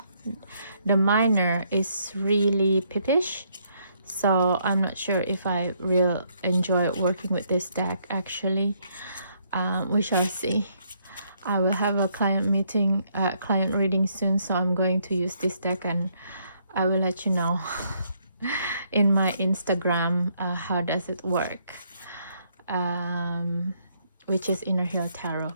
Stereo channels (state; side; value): inverted; both; correlation -0.71